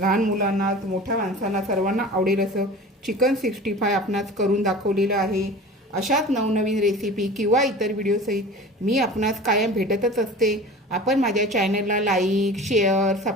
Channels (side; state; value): both; normal; correlation 0.38